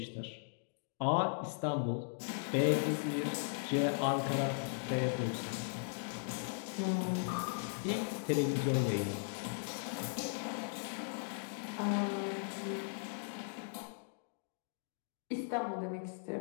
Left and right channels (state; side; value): silent; right; digital silence